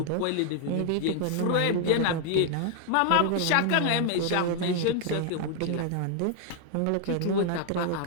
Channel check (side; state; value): both; different; correlation 0.00